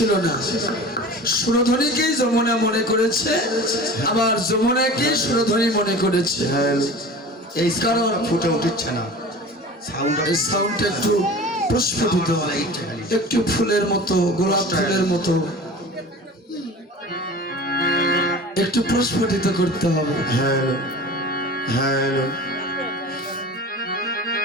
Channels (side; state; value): both; normal; correlation 0.37